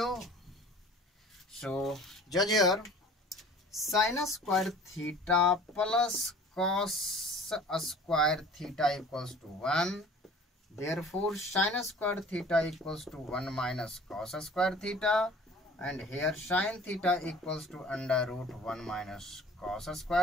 So judge here, sin square theta plus cos square theta equals to 1. Therefore, sin square theta equals to 1 minus cos square theta, and here sin theta equals to under root 1 minus cos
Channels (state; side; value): normal; both; correlation 0.47